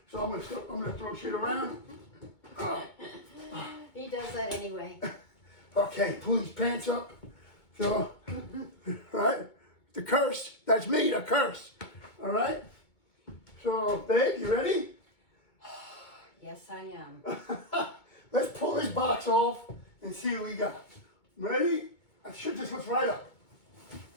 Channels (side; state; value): right; late; 2.2 ms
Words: so I'm gonna throw shit around. He does that anyway. Okay, pull these pants up. So, all right, the curse. That's me, the curse. All right. So, babe, you ready? Yes, I am. Let's pull this box off and see what we got. Ready? I should just lift right up.